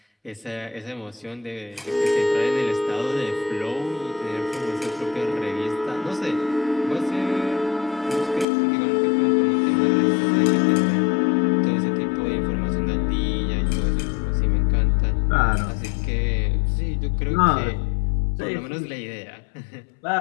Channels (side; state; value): right; drops out; at 8.5 s